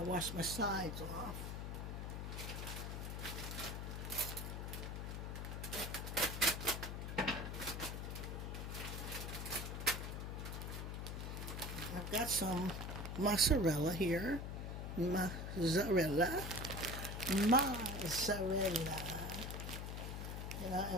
wash my sides off. I've got some mozzarella here. Mozzarella. Mozzarella. And I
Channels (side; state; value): left; noise; hum, 4 dB below the sound